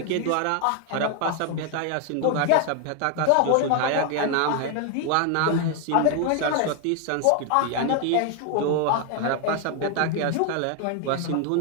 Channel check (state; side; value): different; both; correlation 0.01